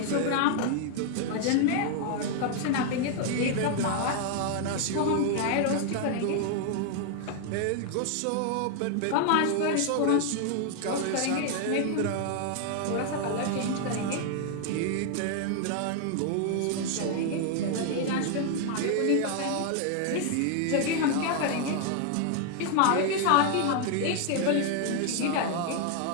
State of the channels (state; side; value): different; both; correlation 0.00